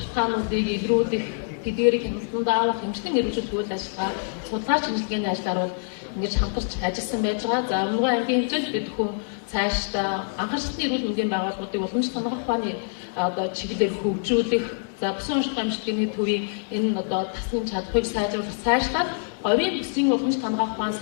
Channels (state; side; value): silent; right; digital silence